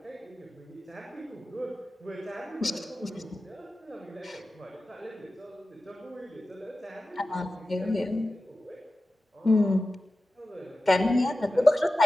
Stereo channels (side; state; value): both; normal; correlation 0.95